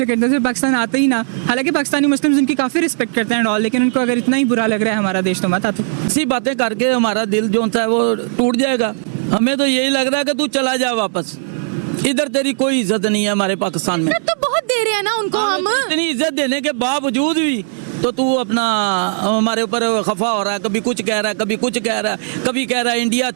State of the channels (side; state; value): left; silent; digital silence